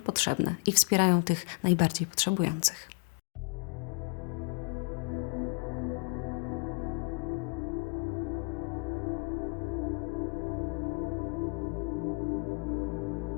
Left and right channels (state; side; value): quieter; right; 32.5 dB